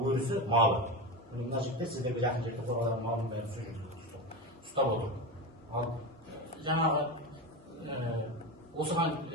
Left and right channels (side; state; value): both; normal; correlation 0.21